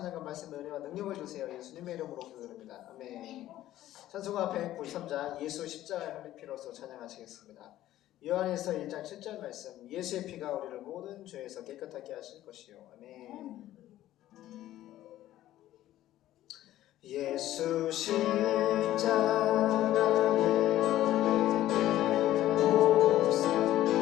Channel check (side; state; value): right; quieter; 13.9 dB